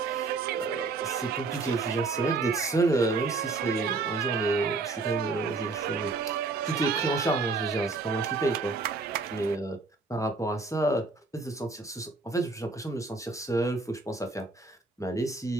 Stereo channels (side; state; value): left; quieter; 3.7 dB